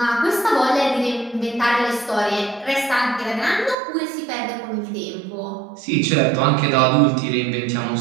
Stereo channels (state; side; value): drops out; left; at 3.8 s